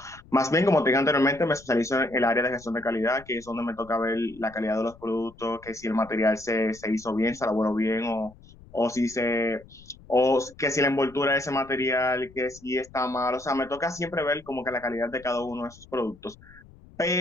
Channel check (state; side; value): noise; left; rumble, 23 dB below the sound